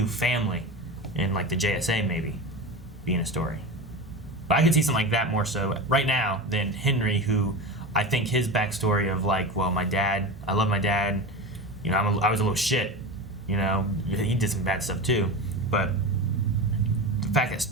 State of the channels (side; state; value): both; normal; correlation 0.26